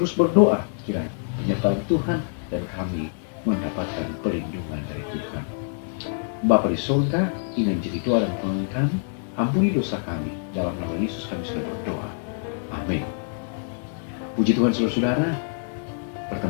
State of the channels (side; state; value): right; silent; 61 dB below the other